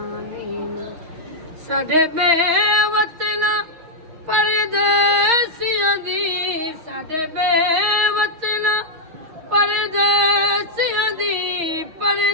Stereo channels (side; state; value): left; late; 6.4 ms